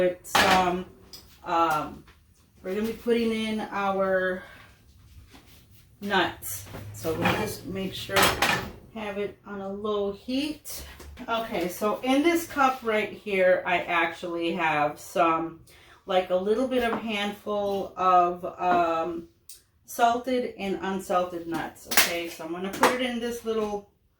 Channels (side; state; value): both; identical; correlation 1.00